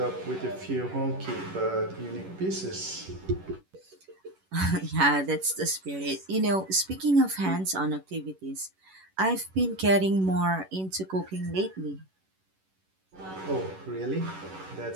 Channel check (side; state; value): left; late; 11 ms